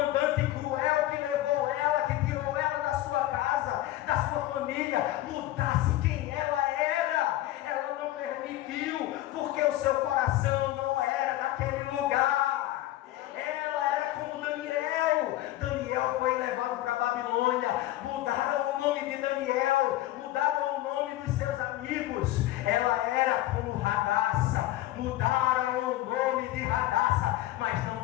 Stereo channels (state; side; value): quieter; right; 15.3 dB